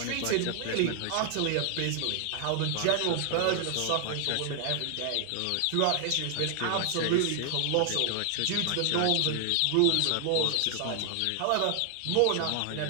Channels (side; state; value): both; different; correlation 0.00